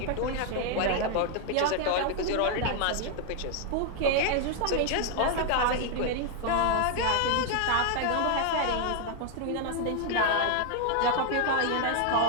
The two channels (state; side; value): different; both; correlation 0.00